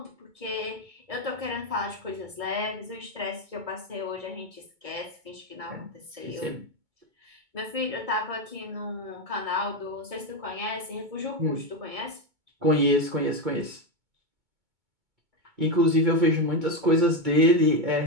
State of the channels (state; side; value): late; left; 2.2 ms